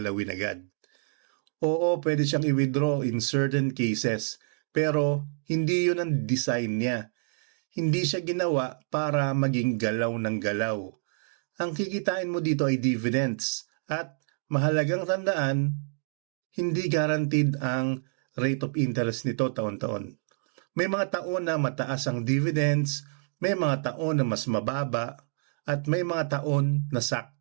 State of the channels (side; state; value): left; silent; digital silence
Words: agad. Oo, pwede siyang i-withdraw in certain cases, pero hindi yun ang design niya. Hindi siya ginawa para maging galaw ng galaw. Ang kikitain mo dito ay dividends at mahalagang tandaan, hindi guaranteed ang rate of interest nito taon-taon. May mga taon na mataas ang dividends, may mga taon na mas mababa, at may mga taon na